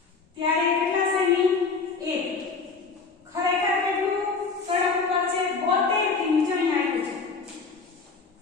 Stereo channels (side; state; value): right; quieter; 4.6 dB